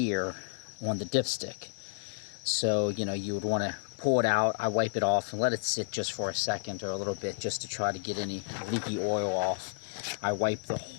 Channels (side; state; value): right; silent; digital silence